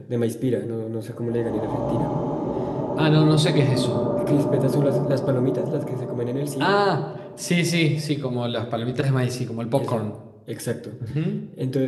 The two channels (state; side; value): identical; both; correlation 1.00